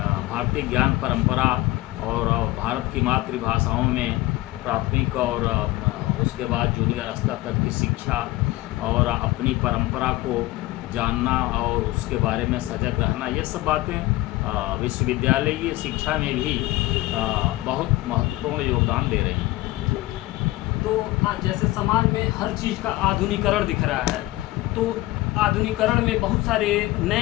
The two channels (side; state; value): right; quieter; 18.3 dB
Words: भारतीय ज्ञान परंपरा और भारत की मातृभाषाओं में प्राथमिक और उसके बाद जूनियर स्तर तक की शिक्षा और अपनी परंपरा को जानना और उसके बारे में सजग रहना, ये सब बातें विश्वविद्यालयीय शिक्षा में भी बहुत महत्वपूर्ण योगदान दे रही हैं। तो आज जैसे समाज में हर चीज़ का आधुनिकीकरण दिख रहा है, तो आधुनिकीकरण में बहुत सारे